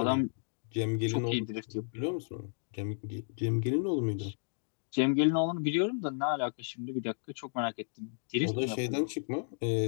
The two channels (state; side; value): silent; right; digital silence